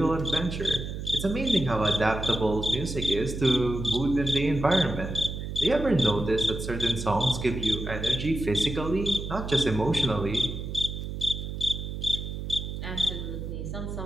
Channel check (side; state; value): right; noise; hum, 6 dB below the sound